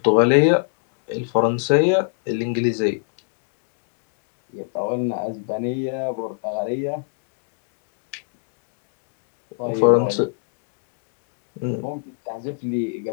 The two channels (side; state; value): right; silent; digital silence